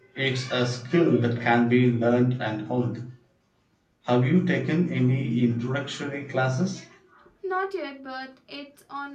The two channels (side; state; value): both; identical; correlation 1.00